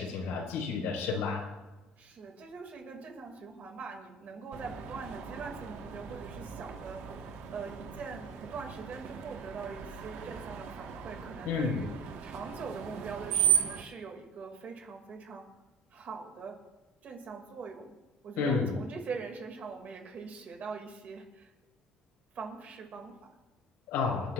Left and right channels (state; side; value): normal; both; correlation 0.30